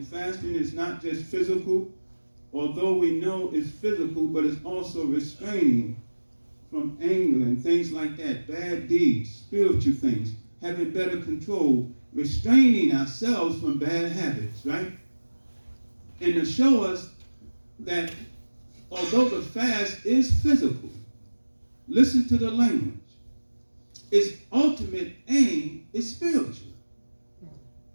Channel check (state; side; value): inverted; both; correlation -1.00